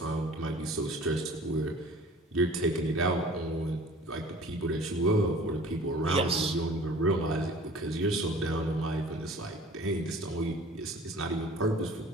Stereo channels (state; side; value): normal; both; correlation 0.46